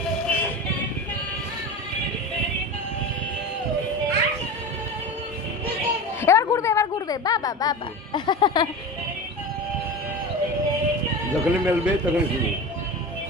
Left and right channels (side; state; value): both; normal; correlation 0.28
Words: এবার ঘুরবে বাবা বাবা যখনই মেলবে তখন শুনি